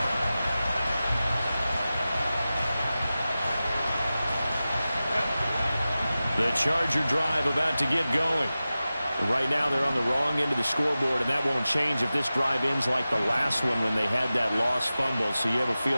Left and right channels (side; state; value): both; inverted; correlation -0.95